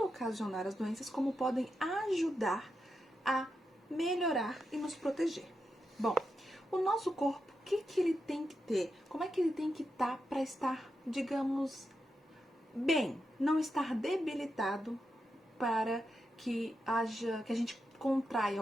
ocasionar as doenças, como podem ajudar a melhorar e nos proteger. Bom, o nosso corpo, o que ele tem que ter? Como é que ele tem que estar para estar, digamos, bem, não estar debilitado para que a gente contraia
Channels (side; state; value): both; normal; correlation 0.86